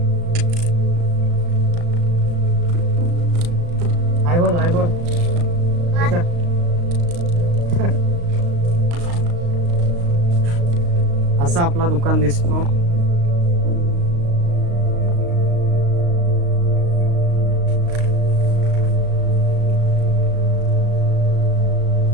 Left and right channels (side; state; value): left; late; 35 ms